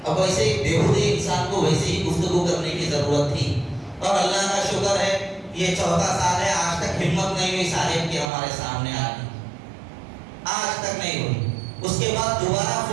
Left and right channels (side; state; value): left; drops out; at 8.3 s